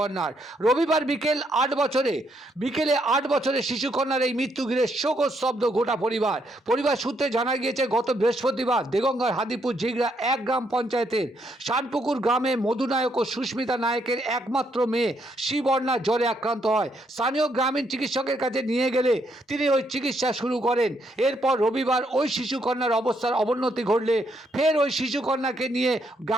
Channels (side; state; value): both; normal; correlation 0.74